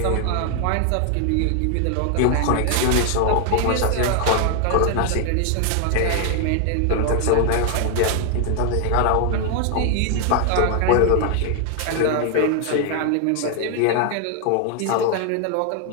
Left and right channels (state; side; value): different; both; correlation 0.00